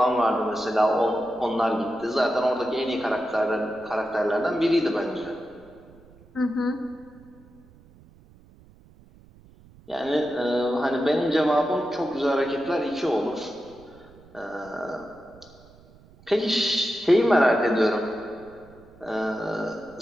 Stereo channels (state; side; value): noise; right; rumble, 25 dB below the sound